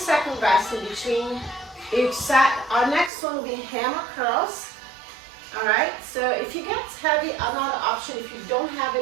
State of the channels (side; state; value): left; drops out; at 3.1 s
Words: rest in between each set. Our next one will be hammer curls. All right, so if you get heavy, another option, if you don't have